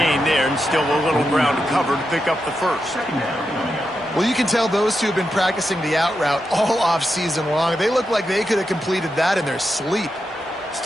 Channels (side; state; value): both; normal; correlation 0.87